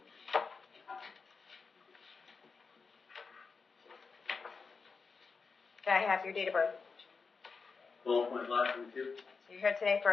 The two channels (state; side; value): quieter; right; 4.9 dB